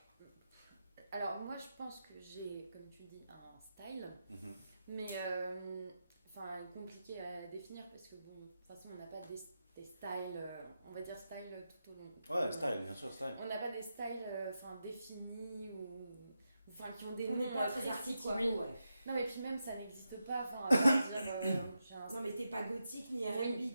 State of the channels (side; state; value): both; inverted; correlation -0.88